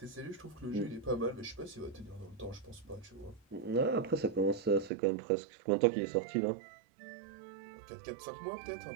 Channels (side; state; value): left; drops out; at 4.9 s